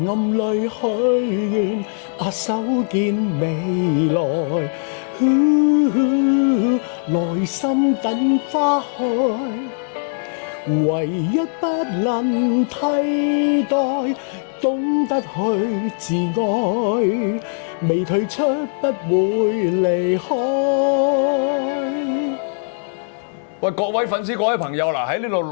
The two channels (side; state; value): right; silent; 66 dB below the other